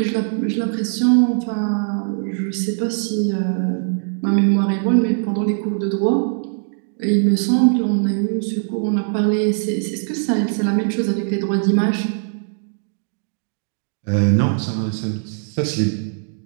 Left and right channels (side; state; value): left; silent; digital silence